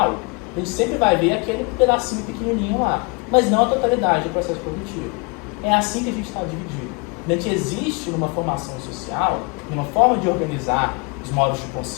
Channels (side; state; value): right; quieter; 31.2 dB